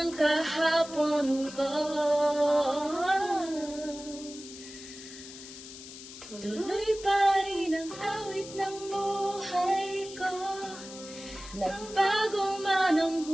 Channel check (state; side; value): noise; left; hiss, 14 dB below the sound